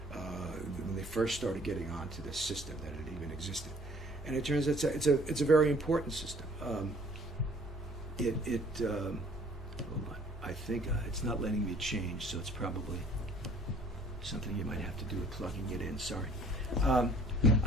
when they first started getting onto this system, that it even existed. And it turns out it's a very important system. Hold on. I think it's not letting me change, so it's probably something you might have to do with plugging it in. Sorry.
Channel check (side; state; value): both; normal; correlation 0.56